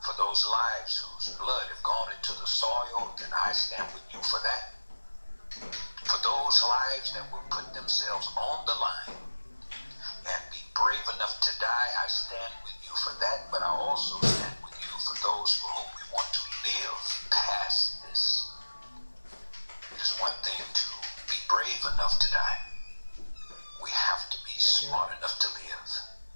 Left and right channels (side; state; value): both; inverted; correlation -1.00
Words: those lives whose blood have gone into the soil, then I stand with you for that. For those lives that will put themselves on the line and be brave enough to die, I stand with you for that. But I also stand with you for those for whom we want to live past this. It is one thing to be brave enough to die. We have to be smart enough to live.